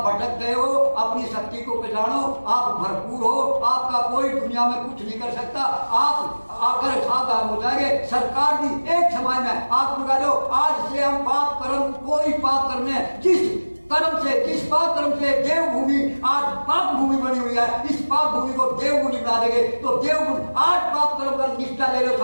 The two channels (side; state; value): both; inverted; correlation -1.00